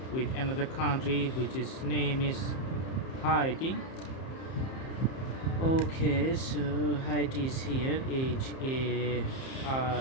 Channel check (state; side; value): late; right; 31 ms